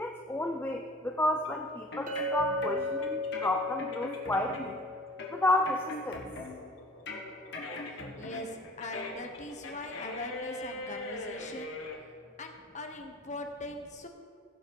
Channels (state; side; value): normal; both; correlation 0.45